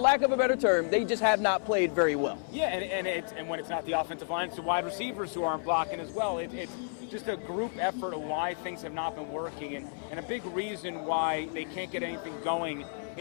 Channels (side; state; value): right; silent; digital silence